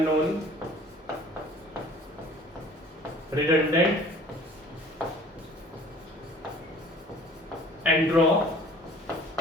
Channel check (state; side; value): normal; both; correlation 0.50